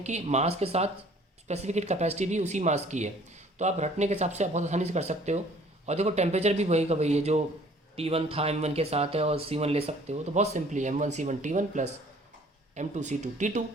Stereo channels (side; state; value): both; normal; correlation 0.55